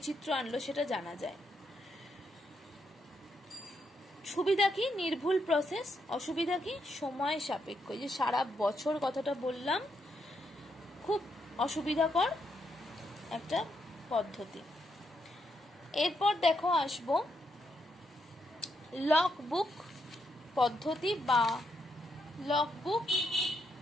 আনলো সেটা জানা যায়। সুবিধা কি, নির্ভুল প্রসেস। অসুবিধা কি, সময় সাপেক্ষ। এই যে সারা বছর কথাটা বললাম, খুব অসুবিধাকর একটা পদ্ধতি। এরপর দেখো আসবো লগবুক পদ্ধতি বা লগবুক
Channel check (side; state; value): both; normal; correlation 0.79